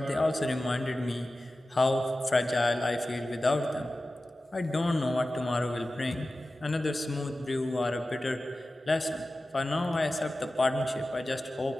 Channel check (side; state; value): both; normal; correlation 0.95